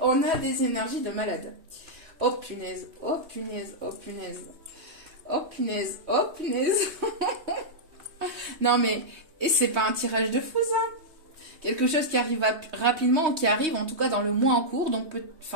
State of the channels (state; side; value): late; left; 3.2 ms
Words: a des énergies de malade. Oh punaise, oh punaise, oh punaise. Oh punaise, oh punaise. Non mais, et c'est pas un tirage de fou, ça. Quelque chose qui arrive rapidement, qui arrive en tout cas dans le mois en cours, donc